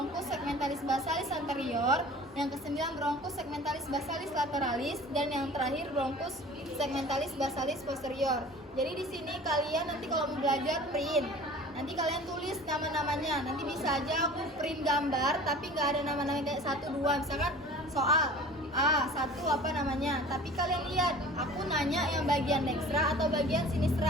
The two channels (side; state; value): both; normal; correlation 0.43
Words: segmentalis basalis anterior, yang ke-9 bronkus segmentalis basalis lateralis, dan yang terakhir bronkus segmentalis basalis posterior. Jadi di sini kalian nanti kalau mau belajar print, nanti kalian tulis nama-namanya. Nanti bisa aja aku print gambar tapi nggak ada nama-nama kayak 1, 2. Misalkan soal A1 apa namanya, tapi kalian lihat aku nanya yang bagian dextra atau bagian